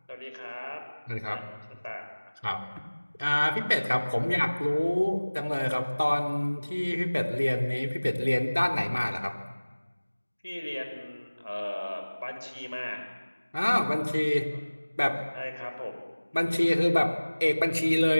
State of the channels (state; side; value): inverted; both; correlation -1.00